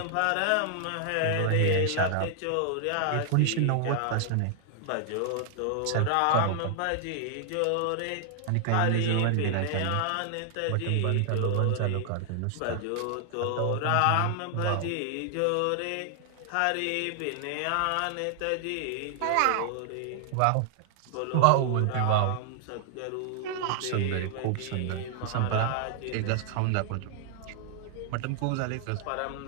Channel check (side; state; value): both; different; correlation 0.00